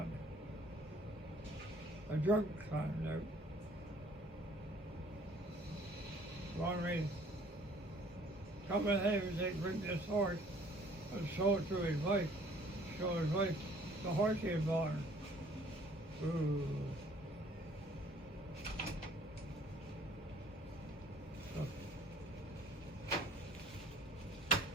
a drunk climbed out. Wanted me to come ahead and say, bring this horse and show it to his wife. Show his wife the horse he had bought her. Ooh. So,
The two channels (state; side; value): normal; both; correlation 0.57